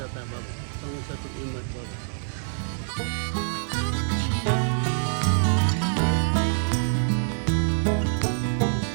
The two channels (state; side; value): silent; left; digital silence